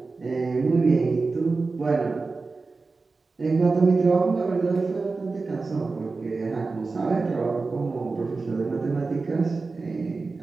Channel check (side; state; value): left; quieter; 4.0 dB